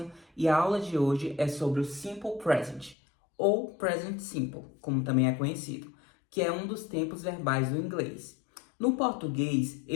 e a aula de hoje é sobre o Simple Present, ou Present Simple, como também é conhecido, que é um dos tempos verbais do inglês. No português,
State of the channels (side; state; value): right; drops out; at 3.0 s